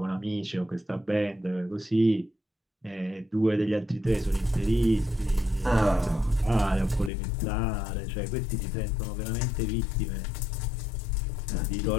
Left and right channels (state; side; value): drops out; right; at 7.1 s